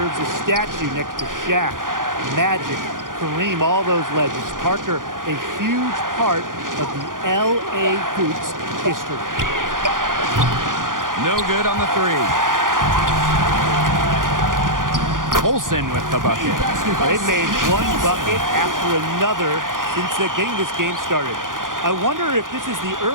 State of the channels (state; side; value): late; left; 0.89 ms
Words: a statue next to Shaq, Magic, Kareem, all those legends. Parker, a huge part of the L.A. Hoops history. No good on the 3. Colson with the bucket. They've made one bucket after another since getting this game started. I wonder if this is the